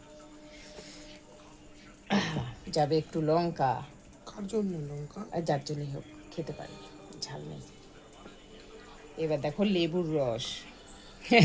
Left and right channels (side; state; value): both; identical; correlation 1.00